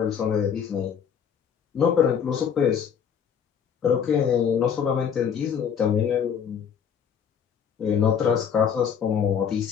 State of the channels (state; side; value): quieter; right; 7.7 dB